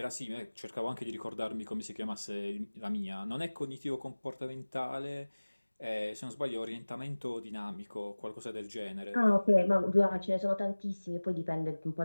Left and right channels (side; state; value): both; inverted; correlation -1.00